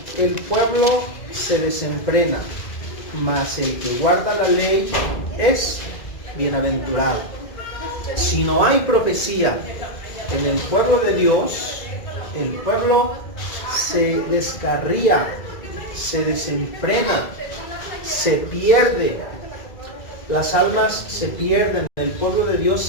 el pueblo se desenfrena, mas el que guarda la ley es bienaventurado. Si no hay profecía en el pueblo de Dios, el pueblo se descarría, se desenfrena, se pierde. Las almas se pierden, el pueblo de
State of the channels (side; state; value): right; late; 2.0 ms